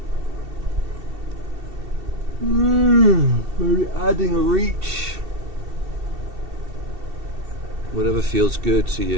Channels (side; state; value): left; late; 2.7 ms